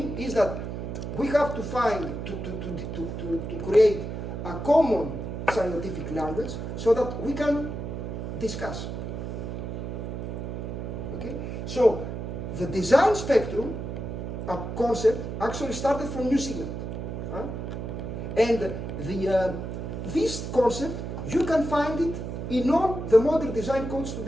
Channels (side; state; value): right; noise; hum, 5 dB below the sound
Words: is that we have to find to create a common scientific language so that we can discuss. Okay, so the design spectrum concept actually started from New Zealand, huh? And this concept you can find it in all the modern design codes